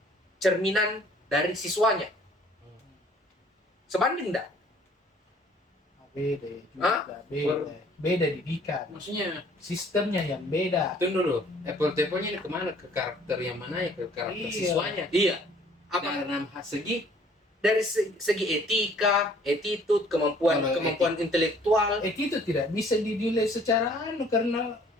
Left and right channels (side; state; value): both; normal; correlation 0.57